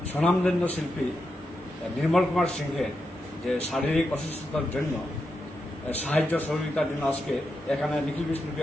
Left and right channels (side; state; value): both; normal; correlation 0.86